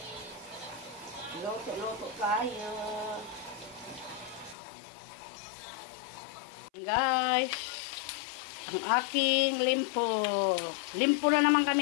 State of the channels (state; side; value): drops out; right; at 4.5 s